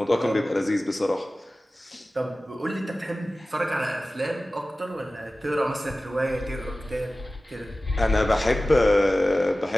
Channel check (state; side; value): normal; both; correlation 0.96